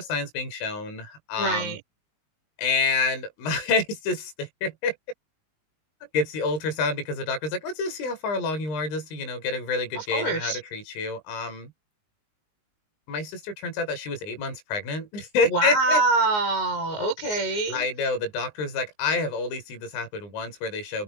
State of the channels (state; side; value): late; right; 19 ms